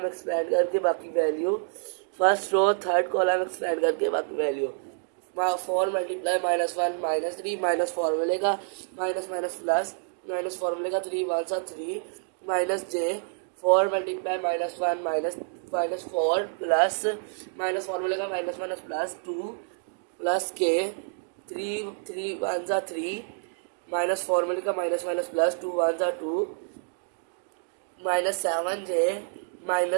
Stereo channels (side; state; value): left; silent; digital silence